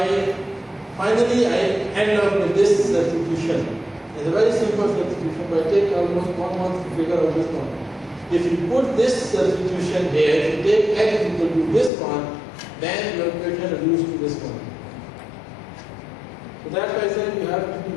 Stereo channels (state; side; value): drops out; right; at 11.9 s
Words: finally I end up with this substitution. It's a very simple substitution, but it takes almost 1 month to figure out this one. If you put this substitution here, if you take x equal to this one, then your equation reduced to this one. So that's why I said you have to be